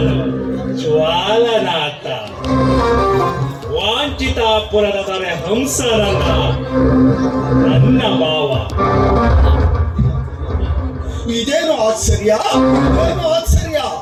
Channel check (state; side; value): identical; both; correlation 1.00